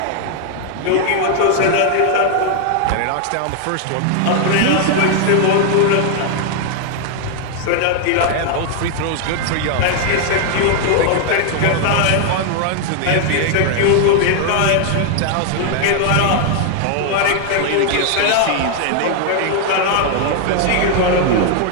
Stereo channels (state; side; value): different; both; correlation 0.00